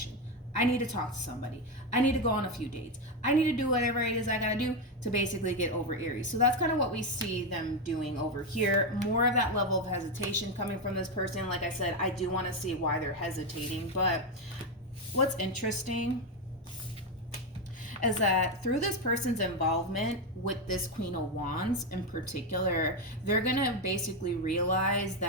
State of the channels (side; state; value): both; normal; correlation 0.09